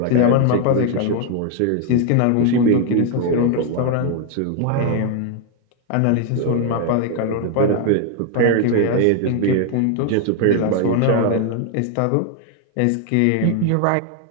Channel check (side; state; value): both; different; correlation 0.00